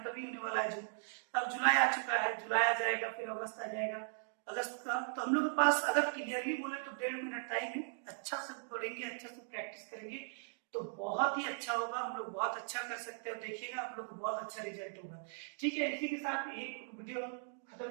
ही होने वाला है जून, अब जुलाई आ चुका है, जुलाई आ जाएगा, फिर अगस्त आ जाएगा, अगस्त का। तो हम लोग के पास अगर क्लियरली बोले तो 1.5 महीना टाइम है, अच्छा से पढ़ेंगे, अच्छा से प्रैक्टिस करेंगे तो बहुत ही अच्छा होगा, हम लोग बहुत अच्छा कर सकते हैं, देखिएगा आप लोग को बहुत अच्छा रिजल्ट होगा, ठीक है। इसी के साथ एक वीडियो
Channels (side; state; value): left; silent; digital silence